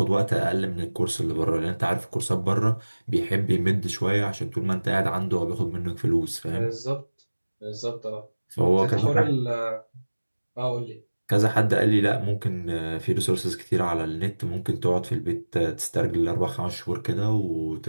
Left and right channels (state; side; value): inverted; both; correlation -1.00